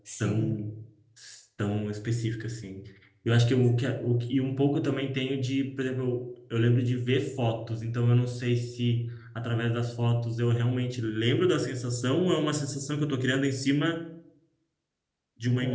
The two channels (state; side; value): identical; both; correlation 1.00